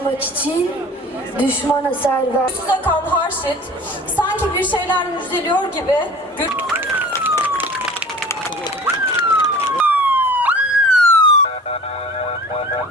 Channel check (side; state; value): both; normal; correlation 0.43